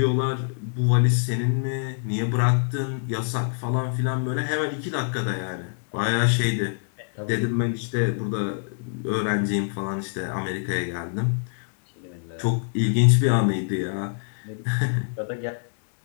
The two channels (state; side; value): silent; right; digital silence